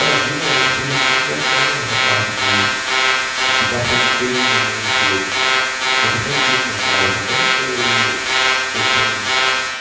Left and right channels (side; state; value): both; identical; correlation 1.00